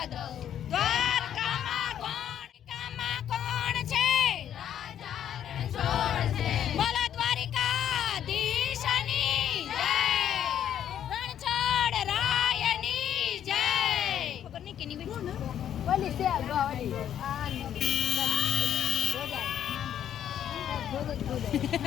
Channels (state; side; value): quieter; right; 10.0 dB